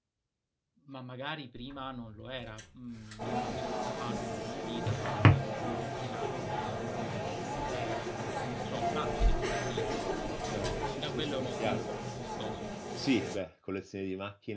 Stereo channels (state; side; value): identical; both; correlation 1.00